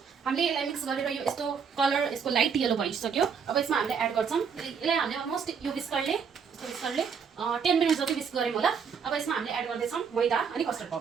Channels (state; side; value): quieter; left; 6.4 dB